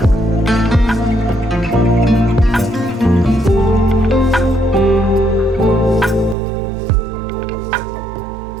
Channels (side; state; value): left; drops out; at 6.4 s